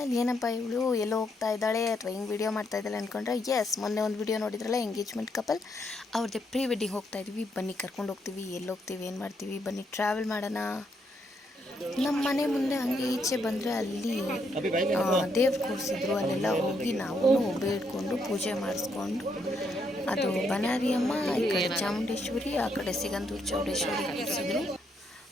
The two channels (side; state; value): both; normal; correlation 0.76